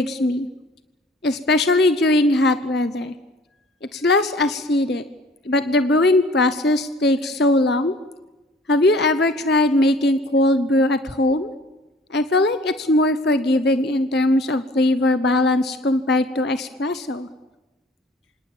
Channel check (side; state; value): both; normal; correlation 0.51